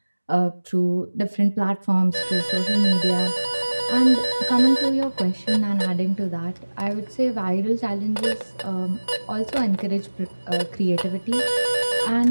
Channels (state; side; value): inverted; both; correlation -1.00